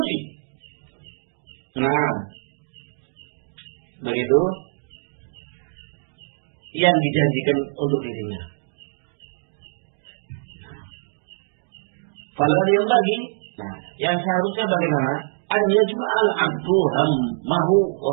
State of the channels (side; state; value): left; silent; digital silence